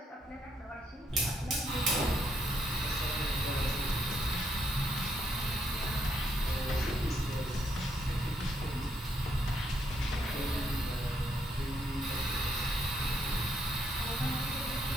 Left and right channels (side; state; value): both; normal; correlation 0.75